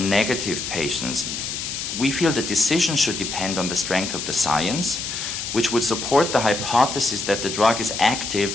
patients, we feel the decision should depend on the strength of the science, which would support the hypothesis that the drug is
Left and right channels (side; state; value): left; noise; hiss, 5 dB below the sound